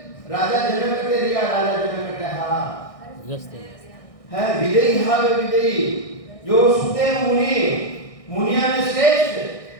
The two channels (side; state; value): right; late; 1.6 ms